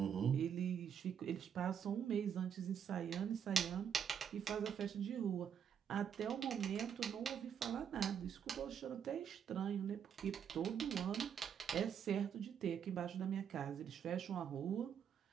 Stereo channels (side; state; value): left; quieter; 8.1 dB